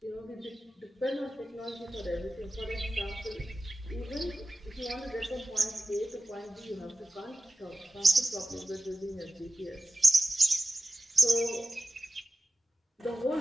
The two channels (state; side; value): normal; both; correlation 0.93